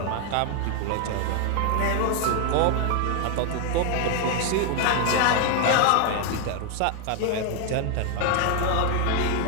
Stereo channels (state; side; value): different; both; correlation 0.01